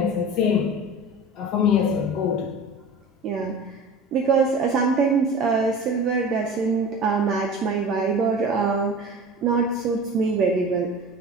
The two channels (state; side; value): normal; both; correlation 0.36